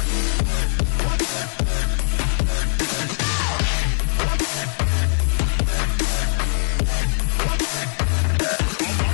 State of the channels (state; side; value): silent; right; 59 dB below the other